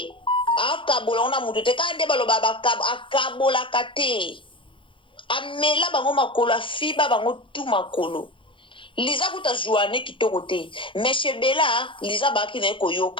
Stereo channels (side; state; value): right; late; 0.25 ms